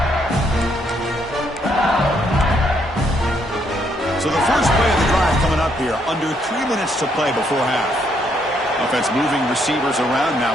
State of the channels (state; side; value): normal; both; correlation 0.72